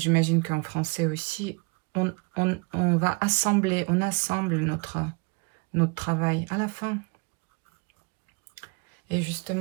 qu'en français aussi, on va assembler, on assemble notre travail à la fin. Et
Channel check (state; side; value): quieter; left; 30.6 dB